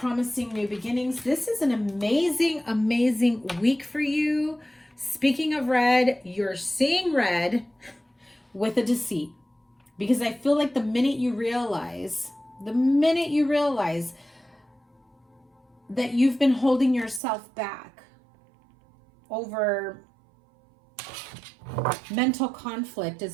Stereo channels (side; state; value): left; drops out; at 17.2 s